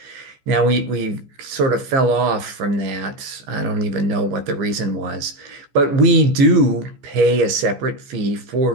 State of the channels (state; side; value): late; left; 14 ms